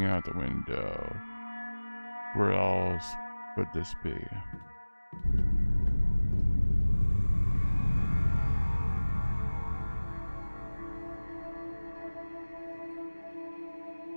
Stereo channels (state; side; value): inverted; both; correlation -1.00